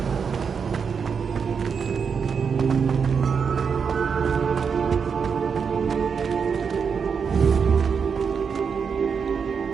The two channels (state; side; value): quieter; left; 6.2 dB